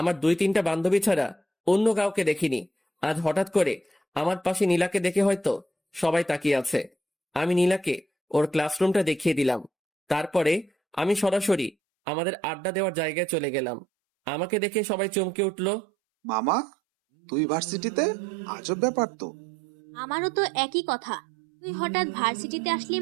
2-3টা বান্ধবী ছাড়া অন্য কাউকে দেখিনি। আজ হঠাৎ করে আমার পাশে নীলাকে দেখে হয়তো সবাই তাকিয়ে আছে। আমি নীলাকে ওর ক্লাসরুমটা দেখিয়ে দিলাম। তারপরে আমি সরাসরি আমাদের আড্ডা দেওয়ার জায়গায় চলে গেলাম। আমাকে দেখে সবাই চমকে উঠলো। মামা, তুই ভার্সিটিতে? আজব ব্যাপার তো। আমারও তো একই কথা, তুই হঠাৎ ভার্সিটিতে আসলি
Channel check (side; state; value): left; drops out; at 11.8 s